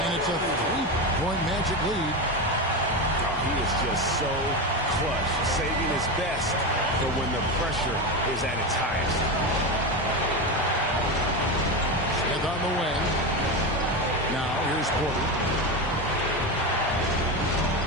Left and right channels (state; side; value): normal; both; correlation 0.17